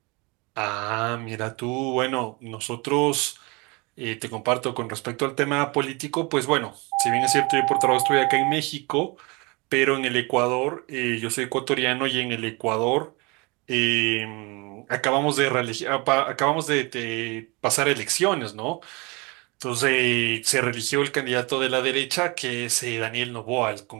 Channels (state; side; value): quieter; left; 27.4 dB